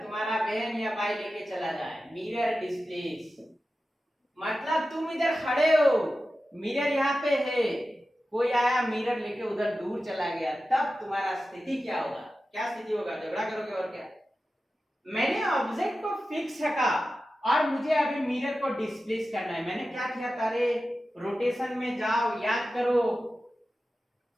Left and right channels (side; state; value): both; normal; correlation 0.93